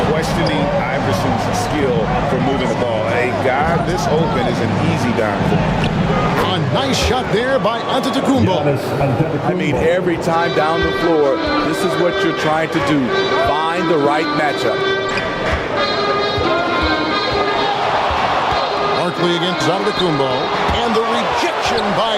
questioning Iverson's skill for moving the ball. A guy this open is an easy down for him. A nice shot there by Antetokounmpo. I mean, every time down the floor, this is what you're trying to do. Find the right matchup. Barkley against Antetokounmpo. And the rejection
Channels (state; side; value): identical; both; correlation 1.00